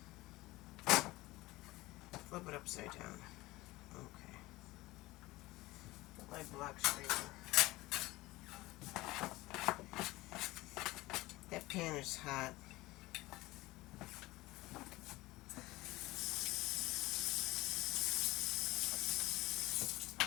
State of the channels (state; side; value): quieter; right; 19.7 dB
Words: Flip it upside down. Okay. Put my block scraper. That pan is hot.